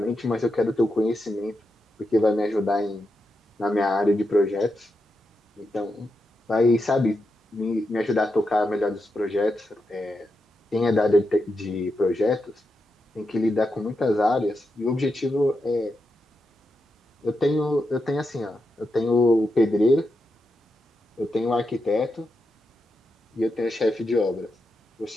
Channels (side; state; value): both; normal; correlation 0.86